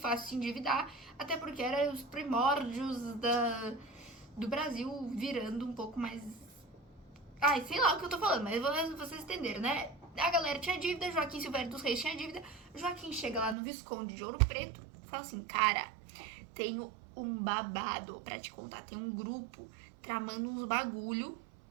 se endividar, até porque eram os primórdios do Brasil virando um pouco mais... Ai, sei lá o que eu tô falando, mas vocês entenderam, né? A galera tinha dívida, Joaquim Silvério dos Reis tinha dívida. Joaquim chega lá no Visconde de Ouro Preto e fala assim, cara, tenho um babado pra te contar. Tem um grupo tramando uns bagulho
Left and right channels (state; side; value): drops out; left; at 13.6 s